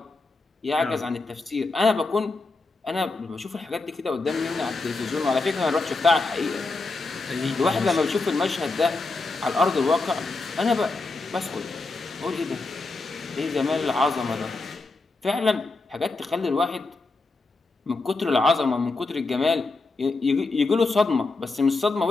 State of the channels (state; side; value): quieter; right; 3.6 dB